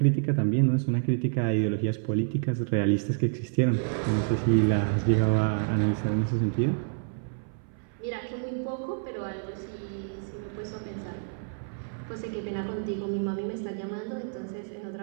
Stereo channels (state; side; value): silent; left; 59 dB below the other